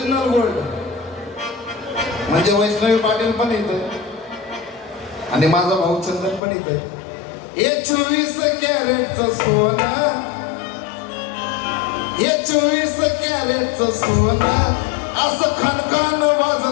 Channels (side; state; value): right; drops out; at 6.4 s